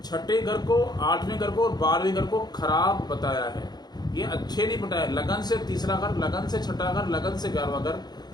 छठे घर को, आठवें घर को और 12वें घर को खराब बताया है। ये अच्छे नहीं बताया। लगन से तीसरा घर, लगन से छठा घर, लगन से 11वां घर,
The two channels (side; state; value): right; late; 0.20 ms